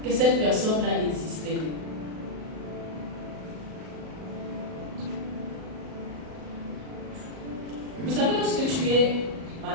que cette personne-là existait. Vous savez, lorsque tu es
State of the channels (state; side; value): late; left; 38 ms